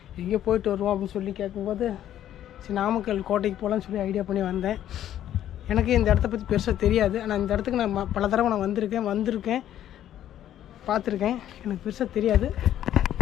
எங்கேயோ போயிட்டு வருவோம் அப்படின்னு சொல்லி கேட்கும்போது சரி நாமக்கல் கோட்டைக்கு போகலான்னு சொல்லி ஐடியா பண்ணி வந்தேன். எனக்கு இந்த இடத்த பற்றி பெருசாக தெரியாது. ஆனால் இந்த இடத்துக்கு நான் பல தடவை நான் வந்திருக்கேன் பார்த்துருக்கேன். எனக்கு பெருசாக தெரியாது.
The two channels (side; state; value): right; quieter; 11.5 dB